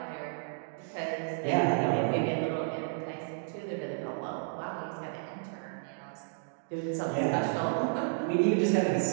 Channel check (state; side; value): silent; left; digital silence